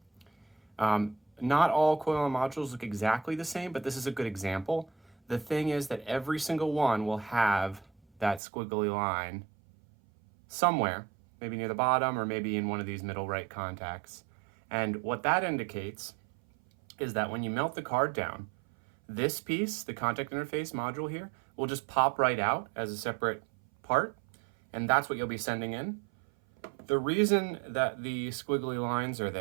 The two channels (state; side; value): drops out; left; at 8.4 s